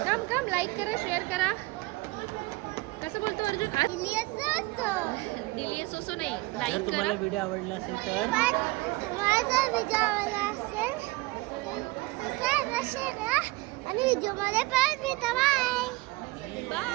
काम लाईक करा शेअर करा. कसं बोलतो अर्जुन? डिलियस असो नाही जर लाईक तुम्हाला करा. व्हिडिओ आवडला असेल तर आणि व्हिडिओ मध्ये पण भेटा. बाय.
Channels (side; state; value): left; quieter; 22.1 dB